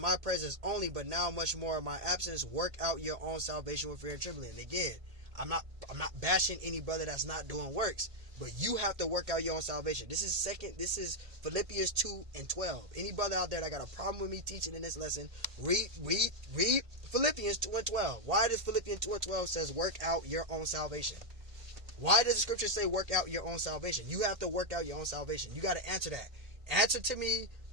presence only, but now much more in my absence, work out your own salvation with fear and trembling. And again, I'm not bashing any brother that's not doing works, but you have to work out your own salvation. This is Philippians 2 and 12. Any brother out there that got a problem with me teaching in this lesson, read Philippians 2 and 12. Why does Philippians 2 and 12 says work out your own salvation? Why does the scripture say work out your own salvation? You have to work out your own salvation. You got to answer that. Answer to me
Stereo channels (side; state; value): left; late; 1.8 ms